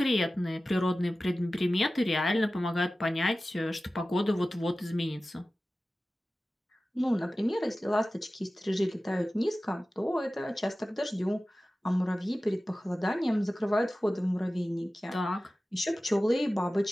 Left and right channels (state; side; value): normal; both; correlation 0.96